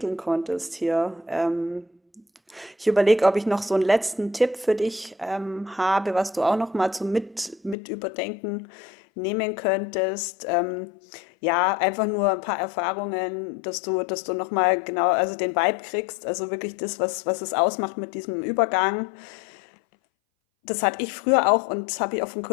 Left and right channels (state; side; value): drops out; right; at 7.8 s